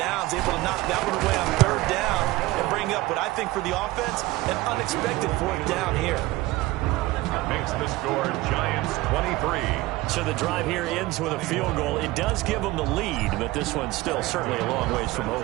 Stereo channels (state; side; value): quieter; left; 18.9 dB